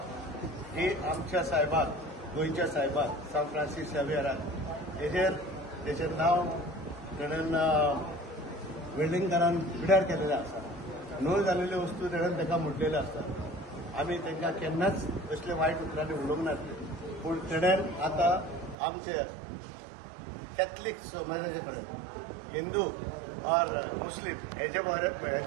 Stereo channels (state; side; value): drops out; left; at 18.8 s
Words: ही आमच्या साहेबाक गोंयच्या साहेबाक सांत फ्रांसीस झेवियराक तेजेर नांव तेणेन वेल्डिंगकारान पिड्यार केलेलें आसा नोंद जाल्ल्यो वस्तू तेणेन ताका म्हणलेल्यो आसतात आमी तांकां केन्नाच असले वायट उतरांनी उलोवंक नासले पूण तेणेन आतां आमचे कॅथलीक समाजाचे कडेन हिंदू और मुस्लिम हेचे